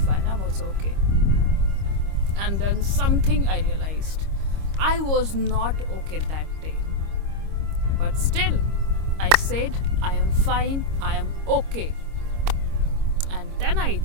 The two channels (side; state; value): left; late; 25 ms